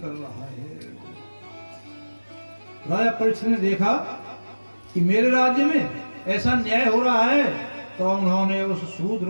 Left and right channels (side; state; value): both; inverted; correlation -1.00